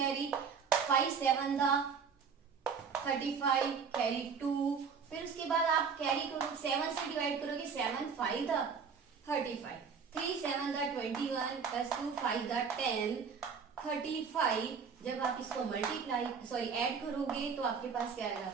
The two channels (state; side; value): quieter; left; 6.1 dB